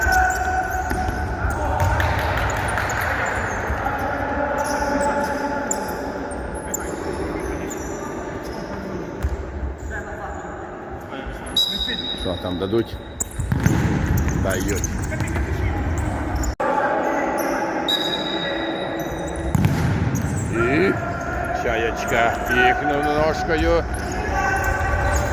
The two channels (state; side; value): identical; both; correlation 1.00